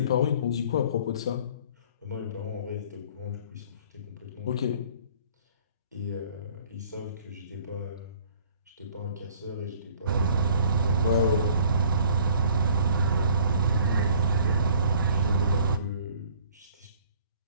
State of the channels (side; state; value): both; inverted; correlation -0.55